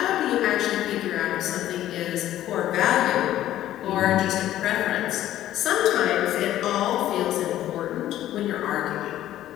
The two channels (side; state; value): right; quieter; 13.1 dB